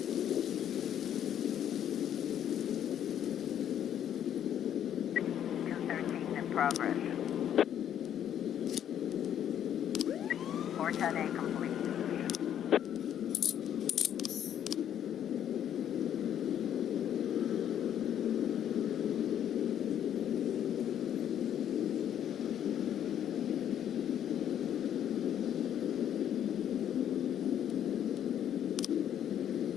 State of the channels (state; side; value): quieter; right; 10.0 dB